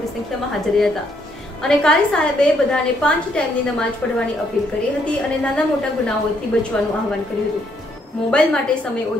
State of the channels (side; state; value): both; normal; correlation 0.72